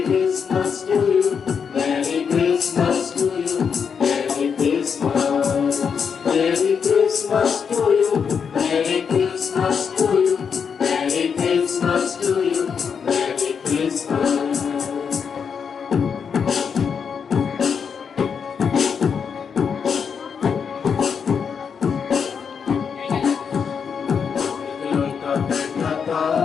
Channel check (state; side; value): quieter; right; 6.6 dB